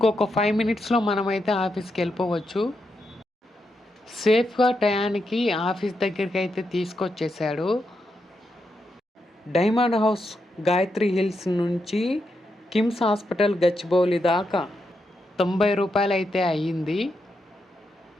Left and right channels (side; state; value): both; normal; correlation 0.84